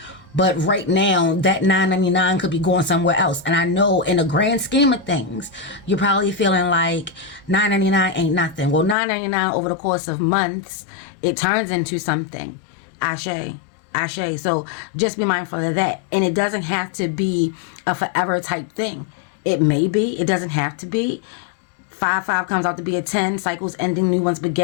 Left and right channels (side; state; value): right; drops out; at 9.0 s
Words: but right now that $9.99 could be going somewhere else. And I know in the grand scheme of things, you're probably feeling like $9.99 ain't nothing. Well, $9.99 over the course of months, it turns into something. Ashe. Ashe. So just be mindful of that. And it doesn't have to be a forever type thing. It may be. It doesn't have to be. 5 comes out to be a 10. Cycles ending, new ones